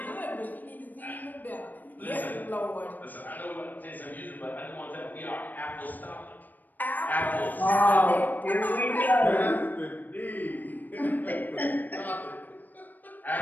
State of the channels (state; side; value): late; right; 0.086 ms